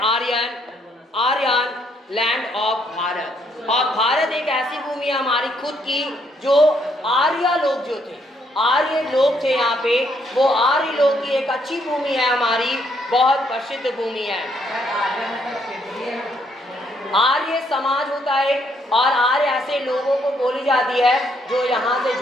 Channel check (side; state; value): both; normal; correlation 0.71